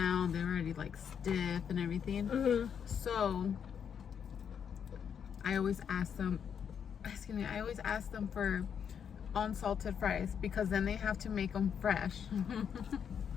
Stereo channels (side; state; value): right; quieter; 7.7 dB